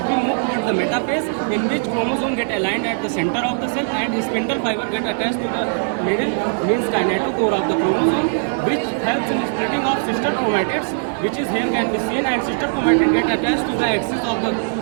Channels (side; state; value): left; silent; digital silence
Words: we move towards the metaphase, in which chromosome get aligned at the center of the cell and spindle fiber get attached to the middle, means kinetochore of the chromosome, which helps in splitting of sister chromatids, which is here can be seen, and sister chromatid get attached to the axis of the